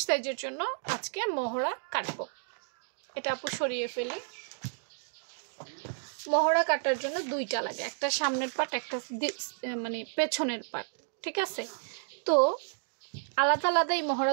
সাইজের জন্য আজকে মহড়া কাটবো। এটা আপু সরিয়ে ফেলি। মহড়া কাটার জন্য দুইটা লাগে, একটা সামনের পাট, একটা মানে পেছনের পাট, ঠিক আছে? তো আলাদা আলাদা এই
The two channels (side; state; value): left; silent; digital silence